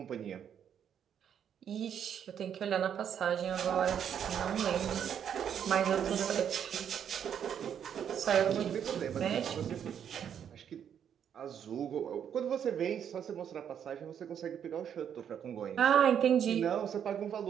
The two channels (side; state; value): left; quieter; 8.7 dB